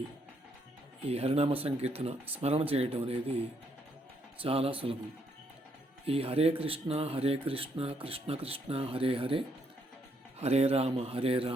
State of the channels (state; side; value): normal; both; correlation 0.73